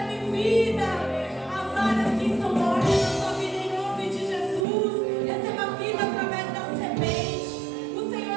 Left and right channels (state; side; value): drops out; left; at 4.7 s